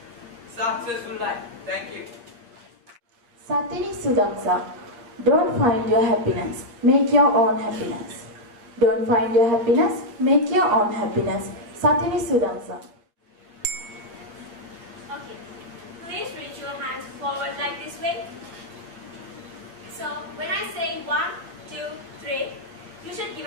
successful life. Thank you. Satini Sudamsa. Don't find your happiness, make your own happiness. Don't find your happiness, make your own happiness. Satini Sudamsa. Okay, please reach your hands forward like this way. So when I say 1, 2, 3, you should give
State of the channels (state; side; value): late; left; 8.7 ms